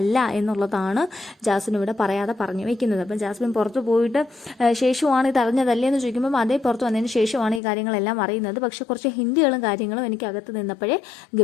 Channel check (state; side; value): drops out; right; at 7.6 s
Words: എന്നുള്ളതാണ് ജാസ്മിൻ ഇവിടെ പറയാതെ പറഞ്ഞു വയ്ക്കുന്നത്. അപ്പം ജാസ്മിൻ പുറത്ത് പോയിട്ട് ശേഷമാണ് ഇത് അറിഞ്ഞതല്ലേ എന്ന് ചോദിക്കുമ്പം അതേ പുറത്ത് വന്നതിന് ശേഷമാണ് ഈ കാര്യങ്ങളെല്ലാം അറിയുന്നത്. പക്ഷെ കുറച്ച് ഹിന്ദികളും കാര്യങ്ങളും എനിക്ക് അകത്ത് നിന്നപ്പോഴേ